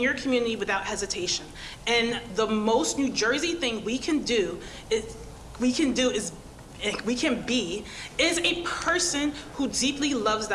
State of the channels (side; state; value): both; identical; correlation 1.00